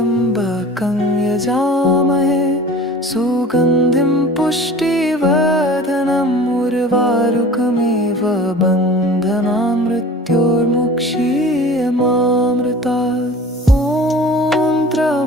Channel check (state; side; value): normal; both; correlation 0.42